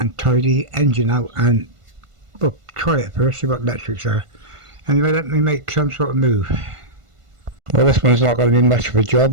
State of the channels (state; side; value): late; left; 1.5 ms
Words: tidy engine out, and well, try it first, see what electrics are. Anyway, let me make some sort of move. Well, this one's not going to be much of a